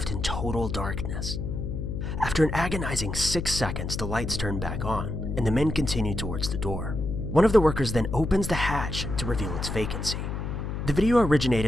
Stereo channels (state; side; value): noise; left; hum, 4 dB below the sound